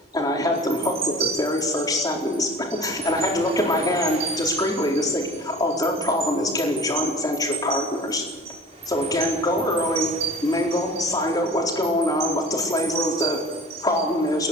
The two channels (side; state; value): both; normal; correlation 0.42